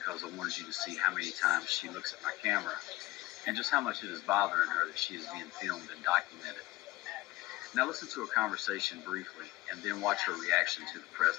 I wanted you to see how many times she looks at my camera and just how much it is bothering her that she is being filmed and documented. Now listen to a conversation briefly and then watch her reaction to the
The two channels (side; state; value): right; quieter; 18.6 dB